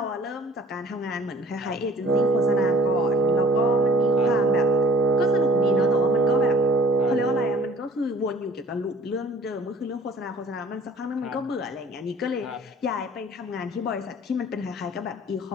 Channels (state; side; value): normal; both; correlation 0.51